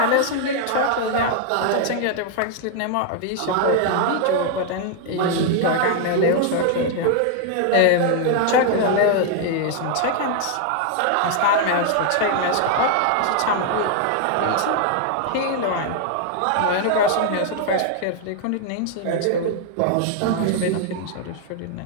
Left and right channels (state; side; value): different; both; correlation 0.00